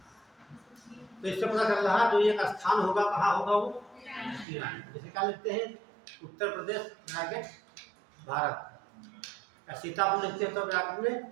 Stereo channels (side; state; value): left; drops out; at 4.5 s